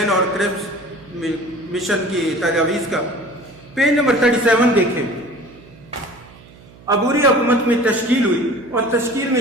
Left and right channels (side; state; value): right; noise; hum, 23 dB below the sound